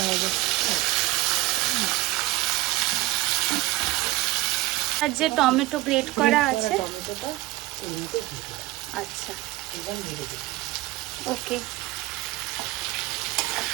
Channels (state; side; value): quieter; left; 18.7 dB